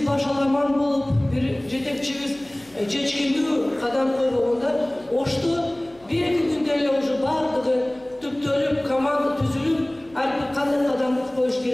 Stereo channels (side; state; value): left; noise; hum, 29 dB below the sound